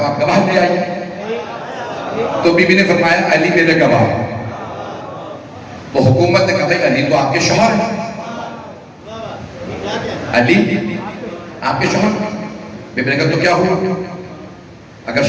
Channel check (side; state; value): both; identical; correlation 1.00